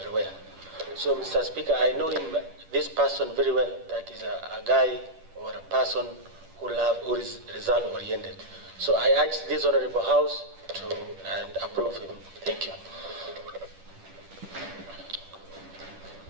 well. So, Mr. Speaker, I know him, this person very well, that is a guy or a person who is result-oriented. So I urge this Honorable House to approve him. Thank you.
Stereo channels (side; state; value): left; late; 10 ms